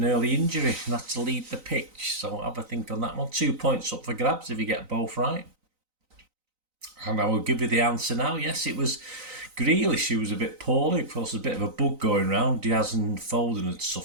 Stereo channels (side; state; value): left; late; 3.9 ms